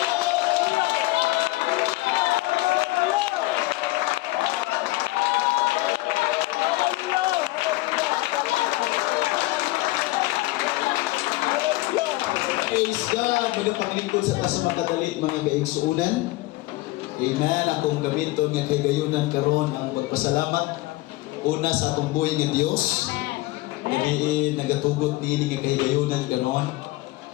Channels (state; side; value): quieter; right; 19.7 dB